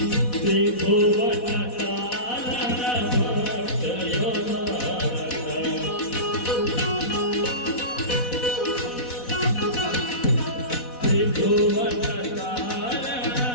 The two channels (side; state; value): right; late; 4.1 ms